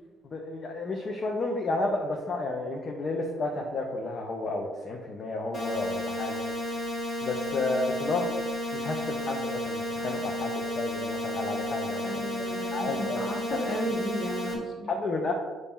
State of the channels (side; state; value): both; normal; correlation 0.67